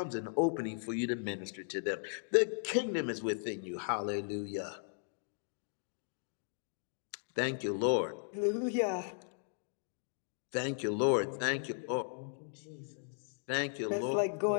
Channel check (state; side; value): silent; right; digital silence